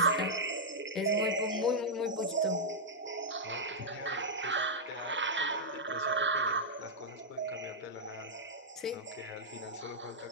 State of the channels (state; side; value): normal; both; correlation -0.08